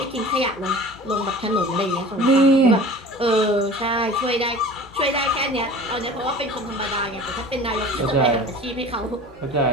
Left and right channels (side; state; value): both; normal; correlation 0.40